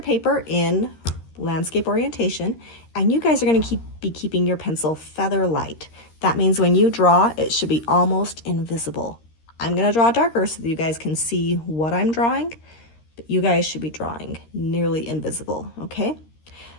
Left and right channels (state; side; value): late; right; 13 ms